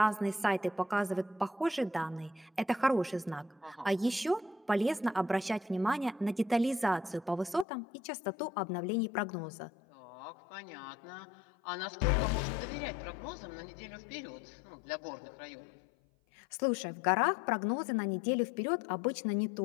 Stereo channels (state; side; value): drops out; right; at 7.7 s